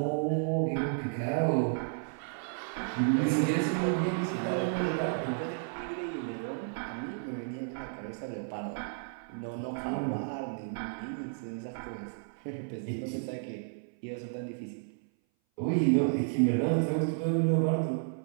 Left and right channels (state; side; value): silent; left; 56 dB below the other